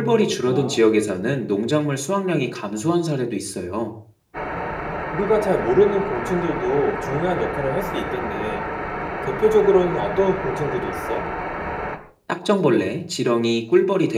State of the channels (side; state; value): both; identical; correlation 1.00